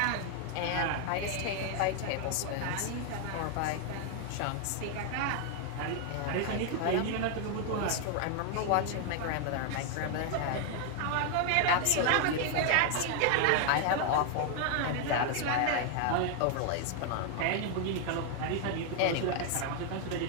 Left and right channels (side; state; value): both; different; correlation 0.00